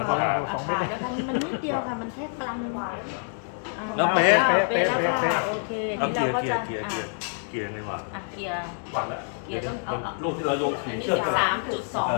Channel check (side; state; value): right; silent; 56 dB below the other